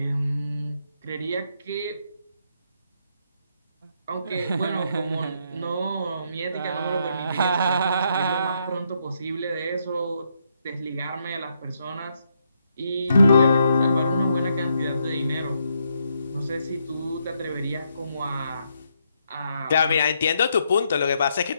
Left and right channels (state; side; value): inverted; both; correlation -0.77